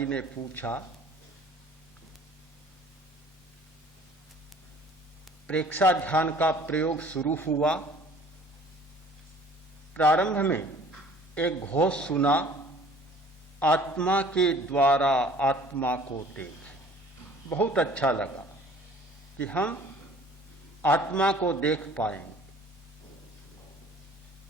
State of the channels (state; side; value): normal; both; correlation 0.51